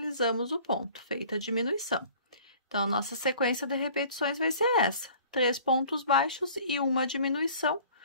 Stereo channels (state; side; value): inverted; both; correlation -0.49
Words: o ponto, feita a diminuição. Então, a nossa sequência de repetições vai ser essa: 3 pontos baixos e uma diminuição